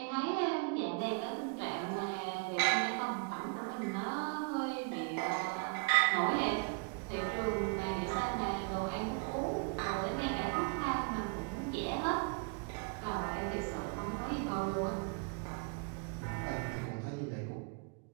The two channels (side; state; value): left; quieter; 33.8 dB